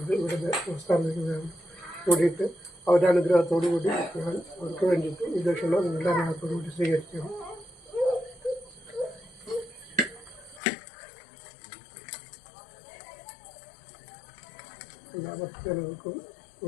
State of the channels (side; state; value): right; drops out; at 10.6 s